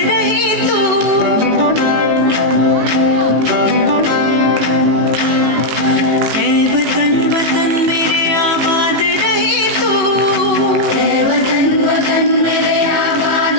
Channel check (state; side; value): late; left; 18 ms